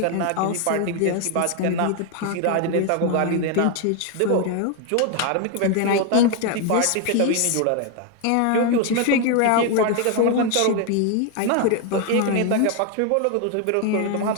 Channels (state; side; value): different; both; correlation 0.01